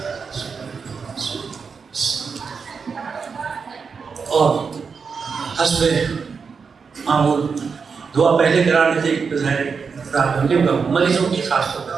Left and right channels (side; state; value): left; quieter; 5.6 dB